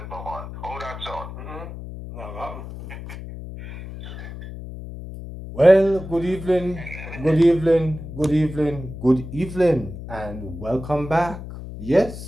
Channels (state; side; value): noise; left; hum, 11 dB below the sound